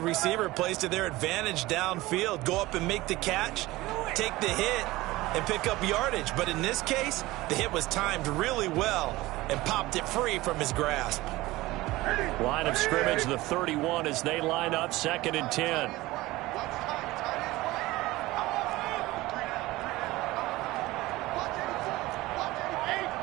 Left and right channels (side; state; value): left; quieter; 18.9 dB